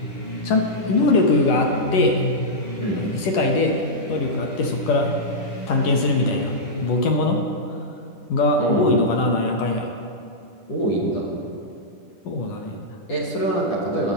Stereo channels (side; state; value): right; late; 11 ms